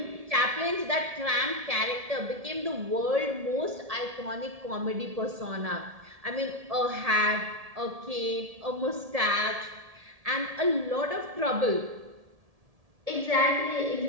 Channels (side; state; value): left; late; 1.7 ms